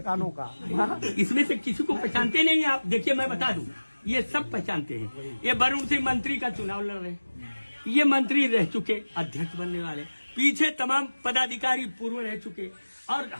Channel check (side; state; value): both; inverted; correlation -1.00